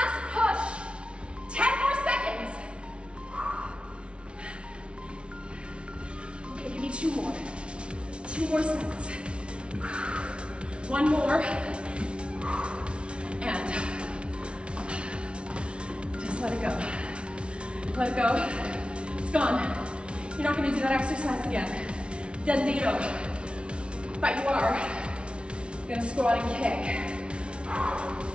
push. 10 more seconds. Okay, give me 2 more. 2 more sets. 1 more. And just let it go. Let it go. It's gone. You're not gonna do that exercise again. Dead zero. But you are gonna squat and kick.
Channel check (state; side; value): late; left; 0.059 ms